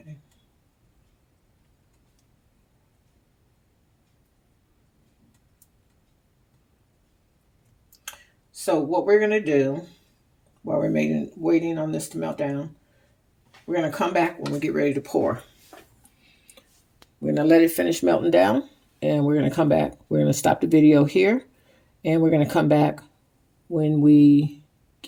So what we're going to do while we're waiting on this to melt down, we're going to come back when we get ready to pour. We're going to let it finish melting down, and we're going to come back. We're going to stop the video here, and we're going to come back when we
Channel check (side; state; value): both; identical; correlation 1.00